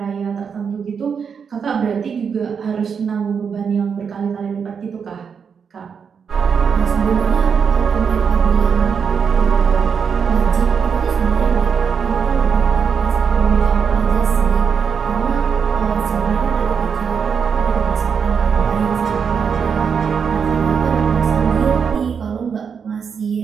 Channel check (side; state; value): left; quieter; 6.5 dB